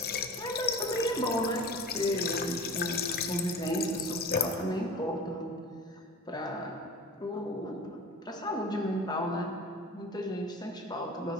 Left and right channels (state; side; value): normal; both; correlation 0.37